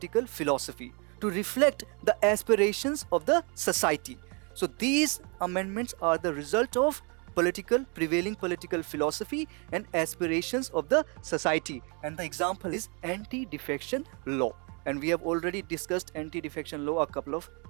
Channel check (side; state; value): left; quieter; 34.4 dB